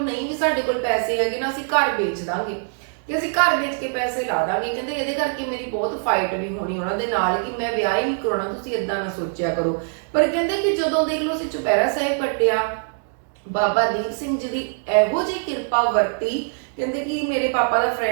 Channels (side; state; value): left; silent; digital silence